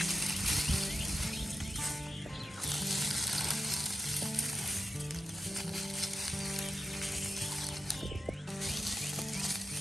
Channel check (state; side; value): normal; both; correlation 0.88